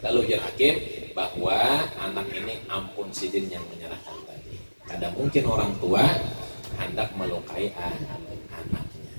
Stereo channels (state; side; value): inverted; both; correlation -1.00